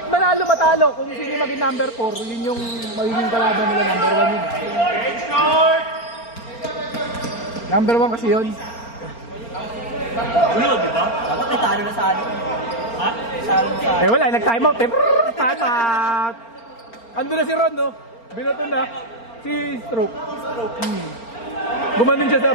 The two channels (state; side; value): late; right; 4.4 ms